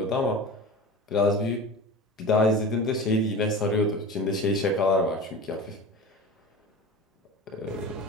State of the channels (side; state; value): both; normal; correlation 0.32